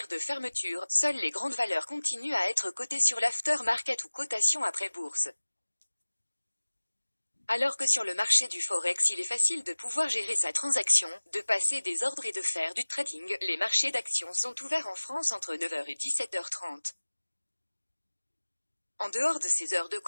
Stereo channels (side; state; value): both; inverted; correlation -1.00